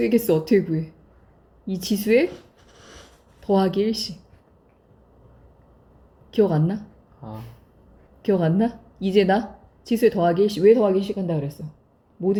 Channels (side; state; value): both; identical; correlation 1.00